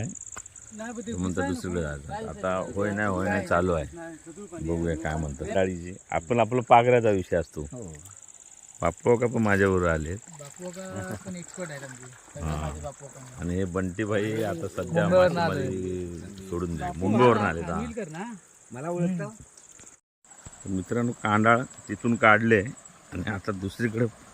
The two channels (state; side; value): identical; both; correlation 1.00